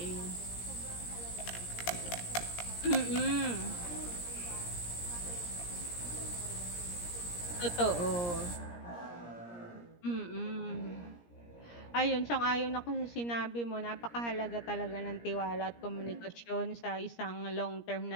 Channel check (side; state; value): right; late; 17 ms